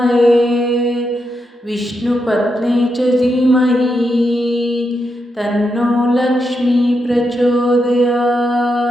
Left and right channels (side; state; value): both; normal; correlation 0.84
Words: विष्णुपत्नी च धीमहि तन्नो लक्ष्मी